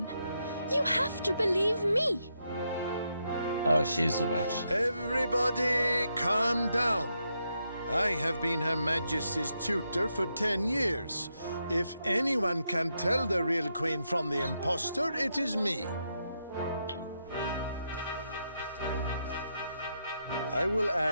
You have to believe me. Oh, she's a witch. Everybody calm down. I have been Her Majesty's tutor for 10 years. If anyone can tell the real queen from the impostor, it is me. I will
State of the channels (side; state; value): both; inverted; correlation -0.82